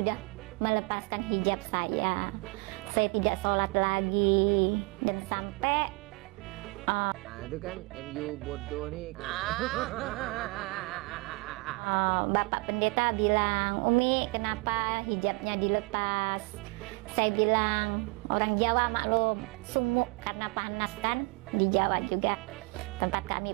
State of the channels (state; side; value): quieter; left; 27.7 dB